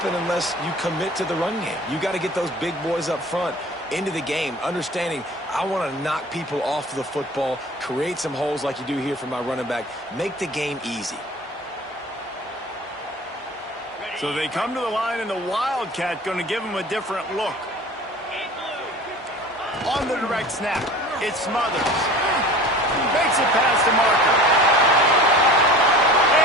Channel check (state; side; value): normal; both; correlation 0.41